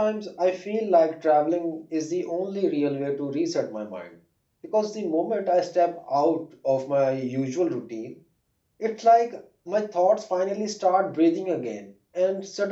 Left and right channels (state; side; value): identical; both; correlation 1.00